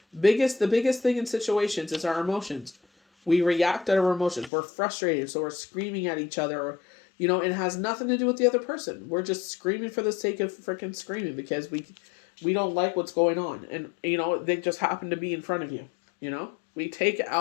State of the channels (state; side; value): drops out; right; at 4.5 s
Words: The biggest thing in situations is our emotions. We react to our emotions. We're frustrated, so we're screaming at each other. Or, it has nothing to do with the other person. We're just screaming for the sake of freaking screaming because we don't like what's going on. And, they just happen to be in front of you. We take